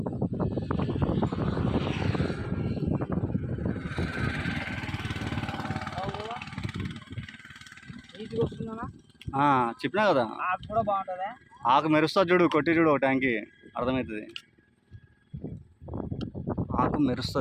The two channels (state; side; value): identical; both; correlation 1.00